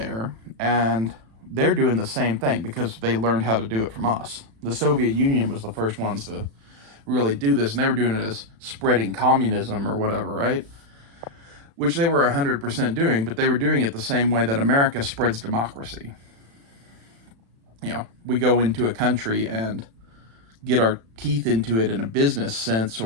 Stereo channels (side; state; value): left; late; 36 ms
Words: and they're doing the same thing because they learned how to do it from us. The Soviet Union was the first ones to really do this, and they were doing it as spreading communism or whatever, right? Which they were 100% doing, but they were doing it the same way that America spreads democracy. You know, we go into a country and get our teeth into it in a business sense